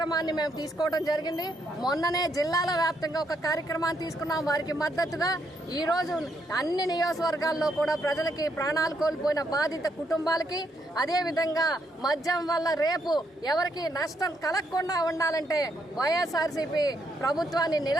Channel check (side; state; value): both; normal; correlation 0.75